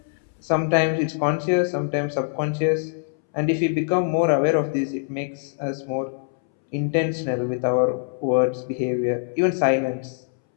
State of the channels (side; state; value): right; silent; 63 dB below the other